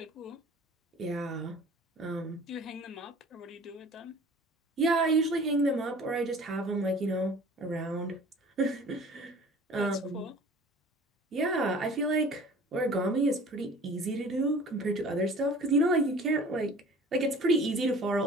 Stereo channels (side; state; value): both; normal; correlation 0.46